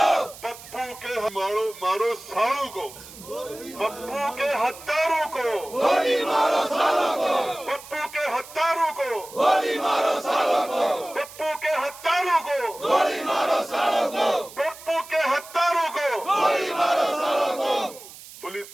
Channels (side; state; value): right; noise; hiss, 17 dB below the sound